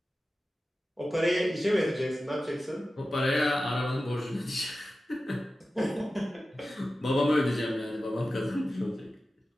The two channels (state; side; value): normal; both; correlation 0.94